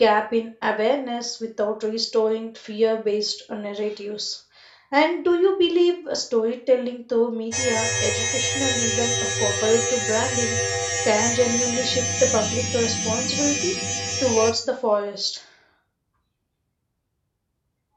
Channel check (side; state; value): both; identical; correlation 1.00